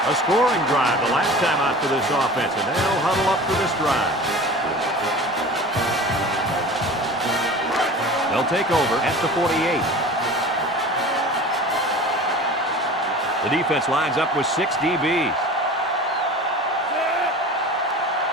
A scoring drive the last time out for this offense, and they'll huddle up for this drive. They'll take over at the 48. The defense lines up with 6 DBs.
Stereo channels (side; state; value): both; normal; correlation 0.38